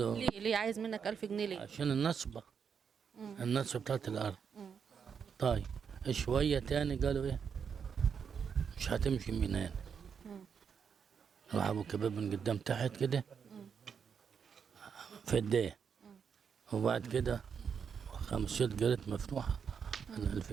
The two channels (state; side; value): quieter; left; 6.8 dB